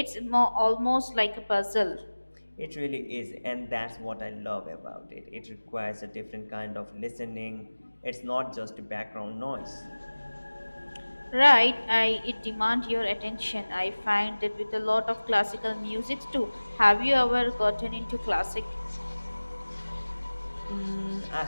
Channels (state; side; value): inverted; both; correlation -1.00